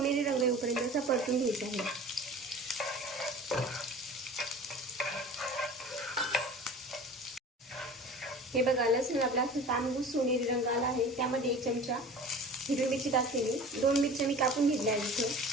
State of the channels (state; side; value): normal; both; correlation 0.40